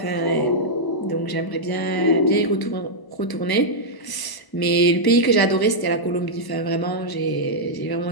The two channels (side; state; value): right; late; 1.0 ms